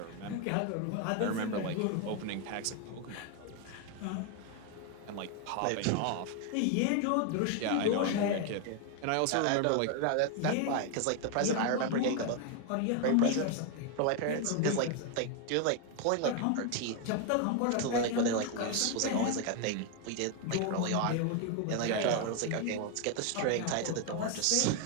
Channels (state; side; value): different; both; correlation 0.01